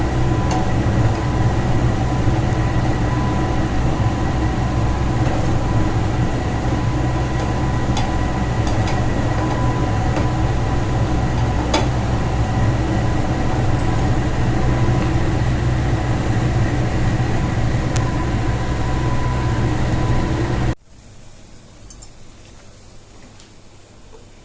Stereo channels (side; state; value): both; identical; correlation 1.00